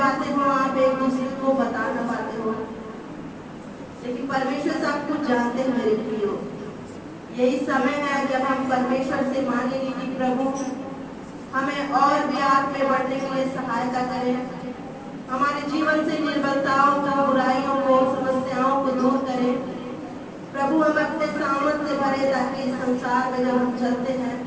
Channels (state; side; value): identical; both; correlation 1.00